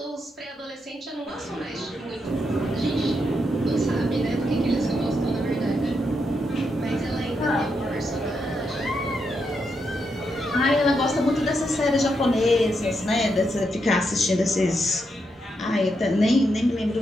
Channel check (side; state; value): both; normal; correlation 0.82